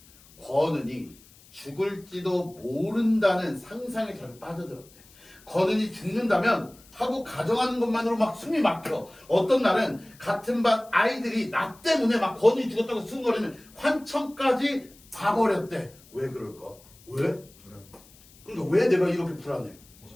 권은이 죽을지도 모른다는 상상에 자주 빠져들었대. 권은이 죽는다면 하고 가정하는 것만으로 막 숨이 막혀. 어떤 날은 같은 반 아이들이 나 때문에 막 권은이 죽었다고 수근거리는 환청까지 봐버렸대. 왜 그럴까? 왜? 그러니까 왜 내가 이렇게 불안해?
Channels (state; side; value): noise; left; hiss, 25 dB below the sound